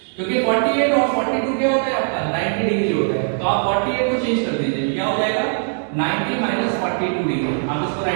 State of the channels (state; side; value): silent; left; 66 dB below the other